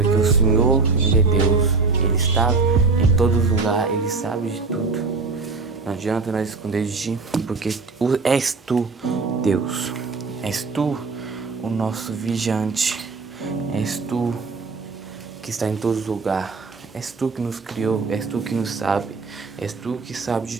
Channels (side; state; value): left; quieter; 4.3 dB